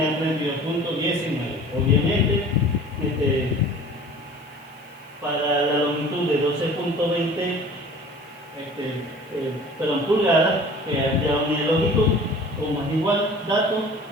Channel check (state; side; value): noise; right; hiss, 30 dB below the sound